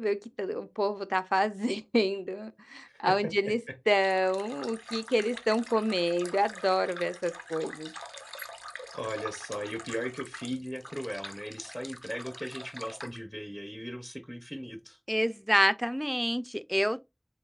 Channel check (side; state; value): both; identical; correlation 1.00